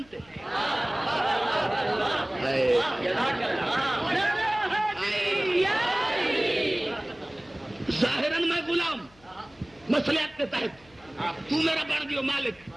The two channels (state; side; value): noise; left; hum, 28 dB below the sound